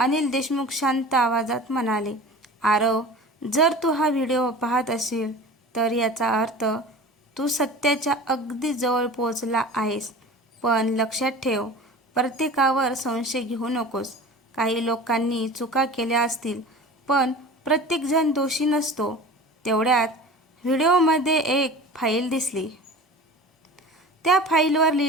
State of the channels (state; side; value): normal; both; correlation 0.38